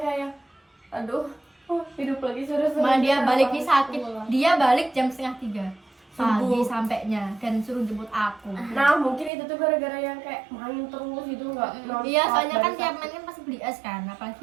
aduh, hidup lagi seru-seru. Malah dia baliknya sakit. Pulang. Dia balik jam 2:30 pagi Subuh. sampainya dan suruh jemput aku. Nah mungkin itu tuh gara-gara yang kayak main terus gitu nggak nonstop. Iya, soalnya kan dari tiap sakit. main kan pasti beli es kan,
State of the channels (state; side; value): drops out; left; at 9.3 s